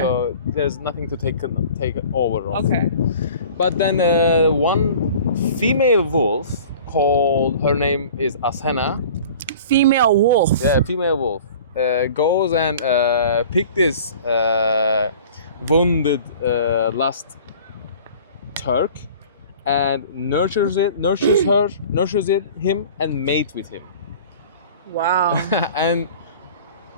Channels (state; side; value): inverted; both; correlation -0.44